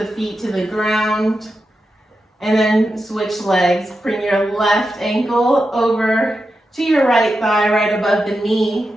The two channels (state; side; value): normal; both; correlation 0.89